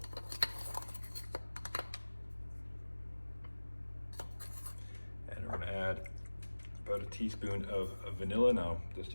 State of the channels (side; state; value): both; inverted; correlation -1.00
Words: And we're going to add about a teaspoon of vanilla. Now, that's